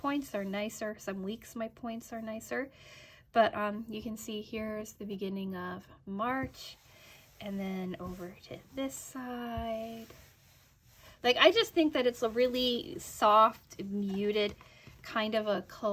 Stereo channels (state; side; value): identical; both; correlation 1.00